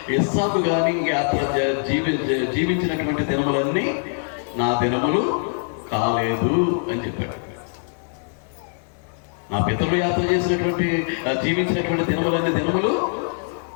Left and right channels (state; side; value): silent; right; 64 dB below the other